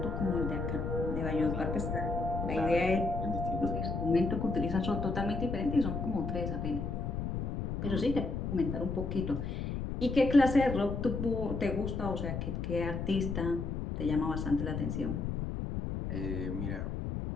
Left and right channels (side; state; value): left; noise; rumble, 3 dB below the sound